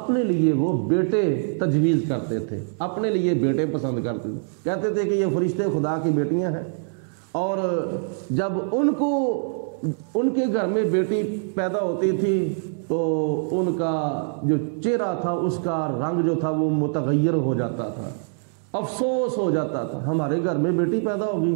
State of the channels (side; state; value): left; silent; digital silence